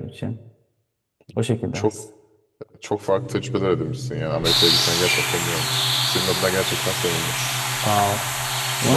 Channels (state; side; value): identical; both; correlation 1.00